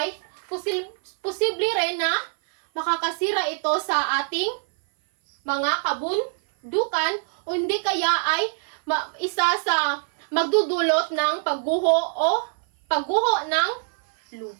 posible rin na makakasira ito sa ating mga kabundukan o hindi kaya ay isa sa magdudulot ng pagguho ng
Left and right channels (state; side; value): silent; left; 56 dB below the other